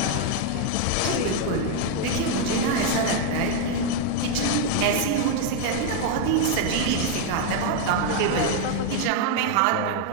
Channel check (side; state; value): both; different; correlation 0.01